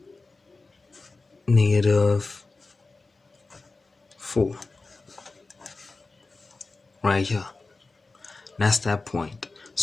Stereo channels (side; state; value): right; quieter; 3.6 dB